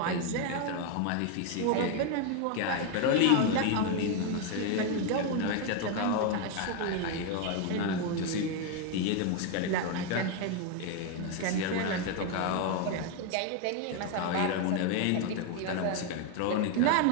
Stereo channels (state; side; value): different; both; correlation 0.01